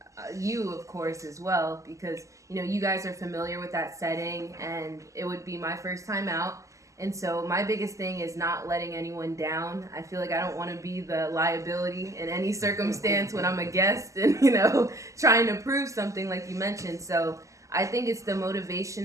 you, of course, as well, because, you know, you guys are familiar with that setting, and it would be my first time out. And so my biggest thing is not letting anyone down. I feel like I don't want to be the liability in any circumstance when I'm a guest and, you know, trying to prove something like you mentioned. So I think it's the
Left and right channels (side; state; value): left; late; 0.16 ms